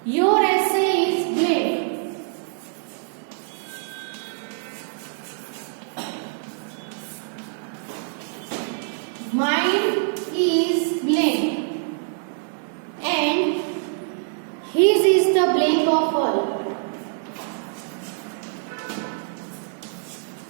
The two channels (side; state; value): left; silent; digital silence